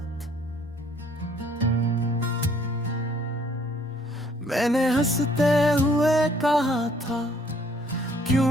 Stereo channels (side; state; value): both; normal; correlation 0.61